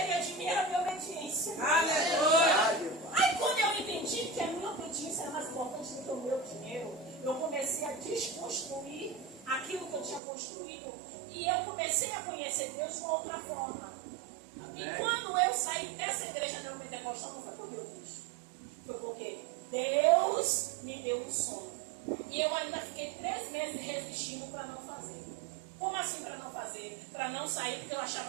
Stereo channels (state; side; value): drops out; left; at 10.2 s